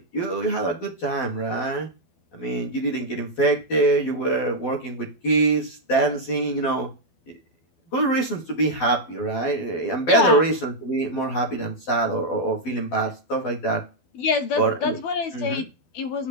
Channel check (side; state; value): right; late; 12 ms